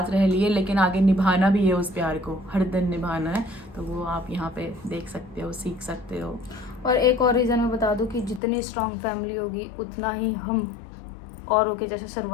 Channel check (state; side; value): drops out; right; at 8.4 s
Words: रह लिए, लेकिन आगे निभाना भी है। उस प्यार को हर दिन निभाना है, तो वो आप यहाँ पे देख सकते हो, सीख सकते हो। और एक और रीज़न मैं बता दूं कि जितनी स्ट्रांग फैमिली होगी उतना ही हम औरों के जैसे